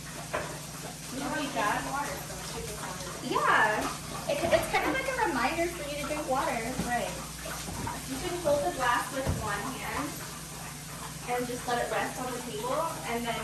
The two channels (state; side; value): identical; both; correlation 1.00